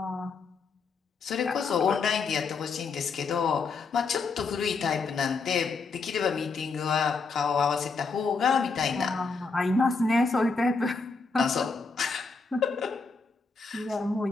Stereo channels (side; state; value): right; quieter; 4.5 dB